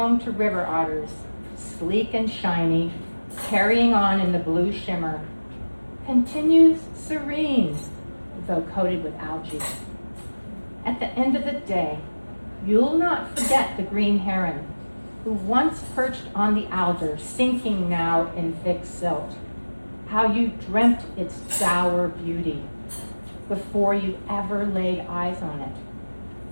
to river otters, sleek and shiny, carrying on in the blue shimmer, continues serene, though coated with algae. At the end of the day, you'll not forget the green heron, who once perched on the alder, sinking now in thick silt. How you dreamt its dour beauty before you ever laid eyes on it.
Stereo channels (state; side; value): inverted; both; correlation -1.00